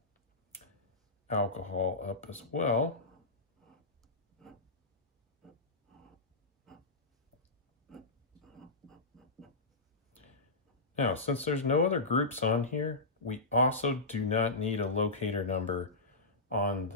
alcohol up as well. Now, since there's no other groups on here, we also do not need a locator number on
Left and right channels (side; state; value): right; quieter; 3.2 dB